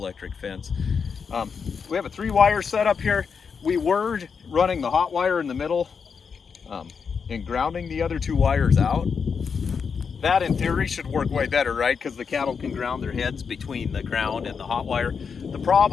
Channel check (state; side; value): quieter; right; 6.0 dB